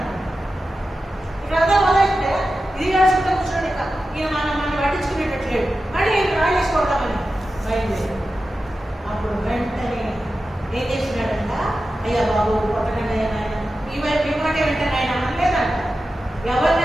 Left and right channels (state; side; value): normal; both; correlation 0.92